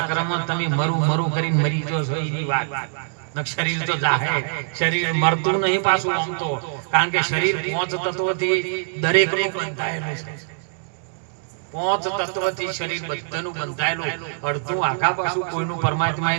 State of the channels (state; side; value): silent; left; digital silence